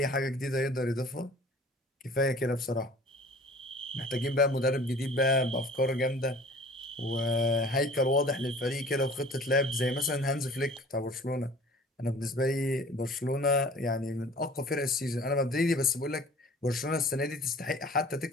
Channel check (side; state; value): both; normal; correlation 0.47